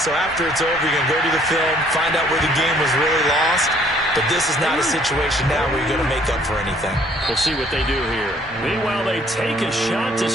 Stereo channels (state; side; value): normal; both; correlation 0.61